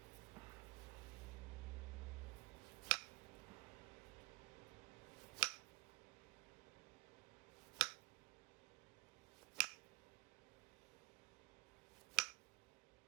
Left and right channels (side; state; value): left; quieter; 25.1 dB